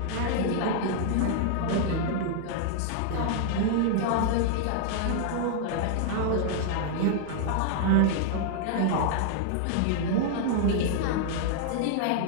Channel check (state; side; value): different; both; correlation -0.01